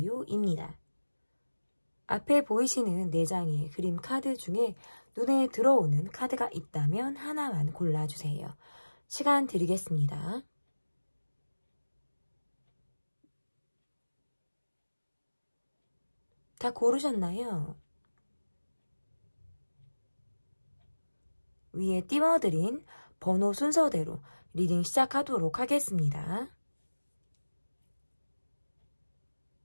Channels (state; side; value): inverted; both; correlation -1.00